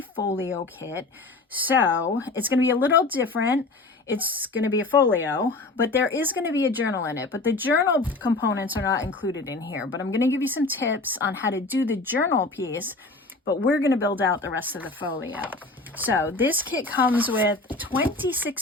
kit. So it's going to be a little different. It's going to be a folio, but there is going to be a journal in it. But the journal components are not included in here. But I'm going to give you some tips on how to do the journal piece, but we're going to build out the rest of the folio. So this kit comes with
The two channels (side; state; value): right; quieter; 3.3 dB